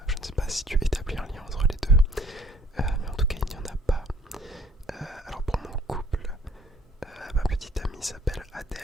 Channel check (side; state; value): both; normal; correlation 0.58